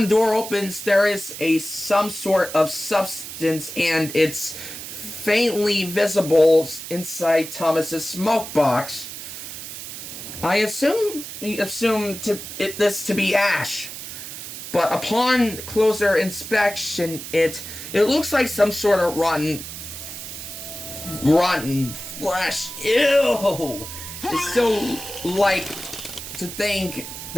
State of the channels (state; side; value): noise; right; hiss, 10 dB below the sound